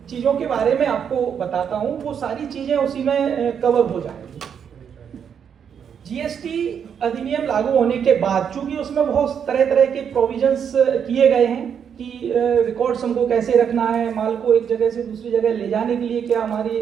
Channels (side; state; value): left; quieter; 7.7 dB